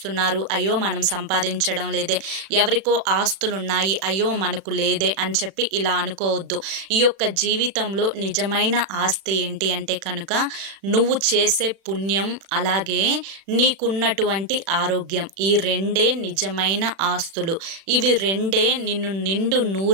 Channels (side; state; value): left; late; 36 ms